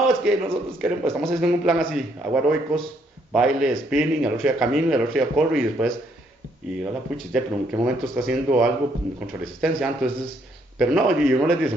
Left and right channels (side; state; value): both; normal; correlation 0.70